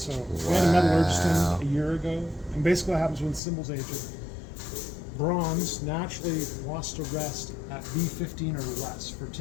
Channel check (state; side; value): drops out; right; at 3.4 s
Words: we had a metallurgist in a year ago, and basically what happens when cymbals age, bronze naturally wants to rest at B15 or less for